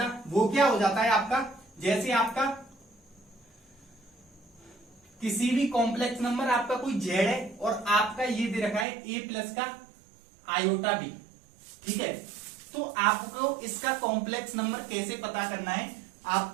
वो क्या हो जाता है आपका, जैसे आपका किसी भी कॉम्प्लेक्स नंबर, आपका कोई जेड है और आपका ये दे रखा है ए प्लस का आयोटा बी, ठीक है। तो आपको इसका कॉम्प्लेक्स नंबर कैसे पता करना है,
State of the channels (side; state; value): left; drops out; at 8.8 s